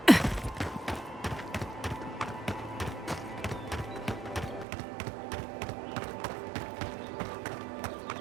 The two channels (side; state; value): left; drops out; at 4.7 s